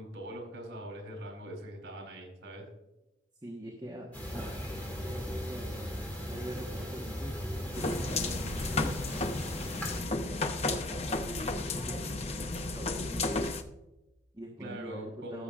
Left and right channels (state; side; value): normal; both; correlation 0.55